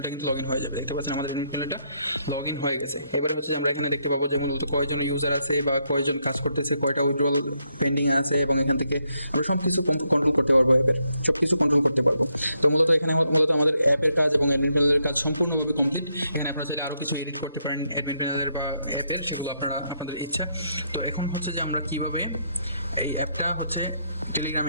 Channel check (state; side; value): inverted; both; correlation -0.77